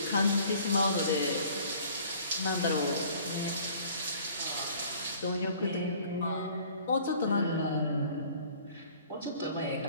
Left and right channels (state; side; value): inverted; both; correlation -0.52